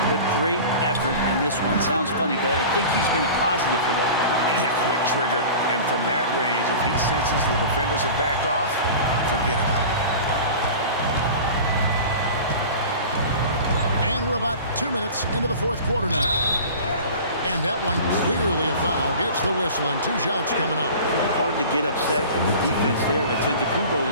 but great effort in this one. Sounds funny, but I think he's been a positive for them. Yeah, quick trigger. And from that range, if he senses the defenders have backed off, forget about it. And we're about 2 minutes into the fourth quarter now. And that one clearly a foul. Gets the whistle, and 2 shots coming up. Hard to get upset at the defense there. Antetokounmpo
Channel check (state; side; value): inverted; both; correlation -0.37